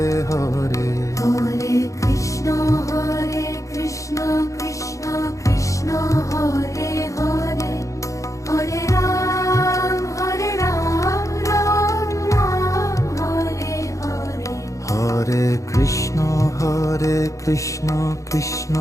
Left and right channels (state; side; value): late; right; 0.15 ms